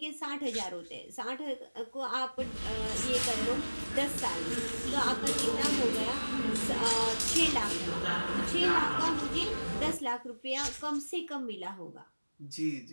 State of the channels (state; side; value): inverted; both; correlation -1.00